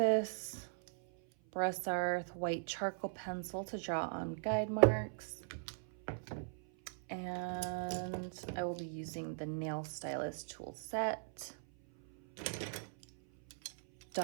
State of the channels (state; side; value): silent; left; 52 dB below the other